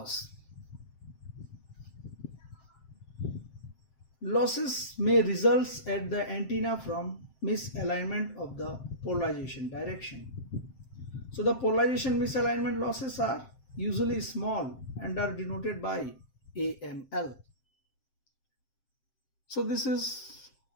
losses may result at the antenna from misalignment of the polarization direction. So the polarization misalignment losses are usually small and are denoted by AML. So this is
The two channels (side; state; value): right; late; 7.6 ms